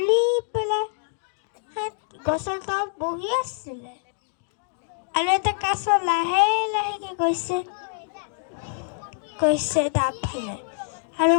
পেলাই গছৰ তলত বহি আছিলে আৰু এটা কাছ লাহে লাহেকে গৈছে তাৰ ফালে। আৰু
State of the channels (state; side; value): silent; right; digital silence